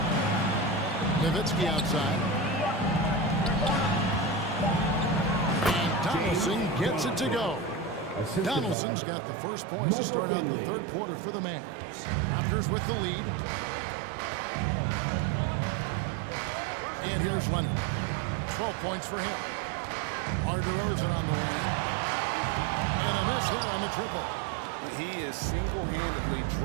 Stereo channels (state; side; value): drops out; left; at 8.8 s